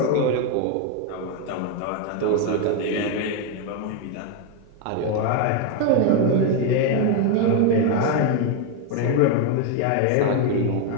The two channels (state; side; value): different; both; correlation 0.01